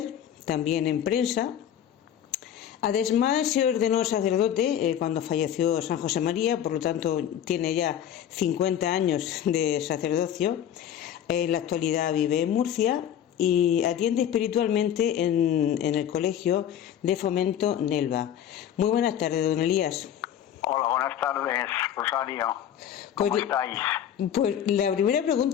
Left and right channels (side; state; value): right; quieter; 10.0 dB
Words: también en prensa. Además, se ordenó sacerdote cuando falleció San José María, por lo tanto tiene ya 50 años de sacerdocio. En la actualidad vive en Murcia y atiende espiritualmente en el Colegio de Fomento Nelva. Muy buenas tardes, don Elías. Hola, buenas tardes, Rosario. ¿Cómo estáis? Pues la primera